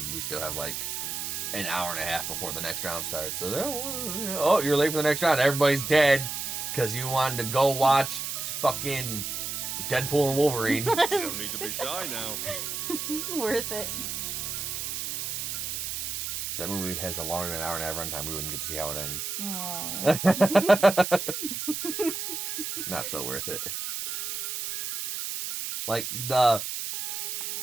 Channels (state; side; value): noise; right; hiss, 4 dB below the sound